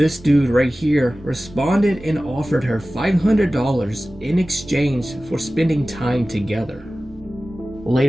dude right here responded and offered her $500 in exchange for spending time together.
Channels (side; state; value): both; normal; correlation 0.96